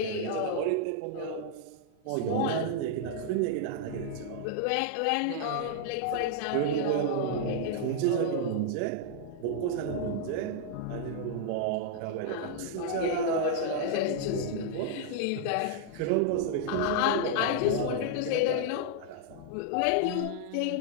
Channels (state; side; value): different; both; correlation -0.01